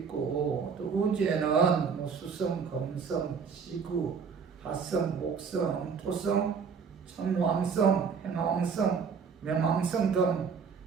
또 우주에는 뭐 수성, 금성, 지구, 화성, 목성, 토성, 천왕성, 행왕성,冥王성 등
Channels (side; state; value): left; quieter; 6.0 dB